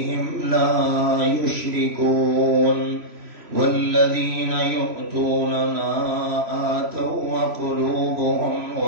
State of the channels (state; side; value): late; left; 3.0 ms